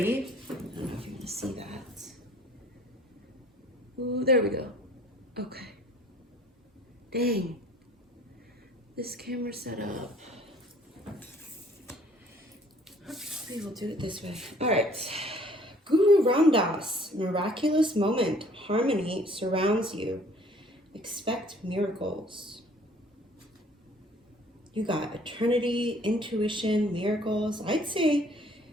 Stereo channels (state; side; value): normal; both; correlation 0.56